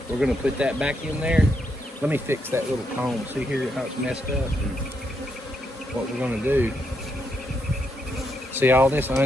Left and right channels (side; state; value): both; normal; correlation 0.79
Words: We're gonna put that back in there. Let me fix that little comb. See here how it's messed up. And what we're gonna do. See all this